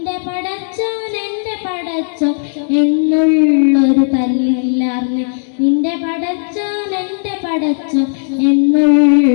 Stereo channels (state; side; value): silent; right; digital silence